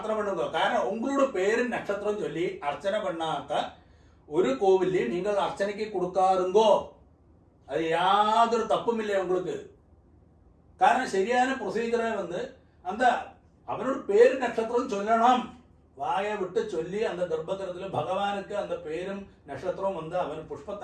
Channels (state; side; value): identical; both; correlation 1.00